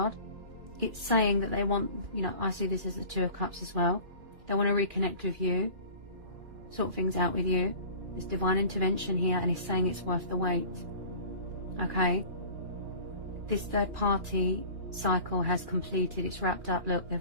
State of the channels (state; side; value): late; left; 2.4 ms